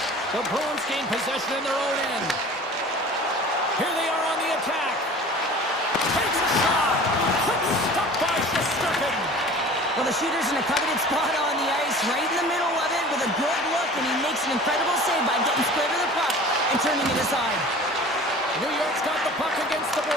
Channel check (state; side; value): normal; both; correlation 0.42